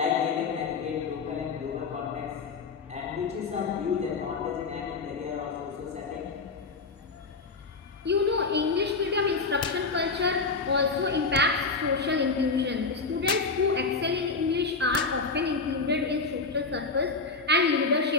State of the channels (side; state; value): right; quieter; 4.3 dB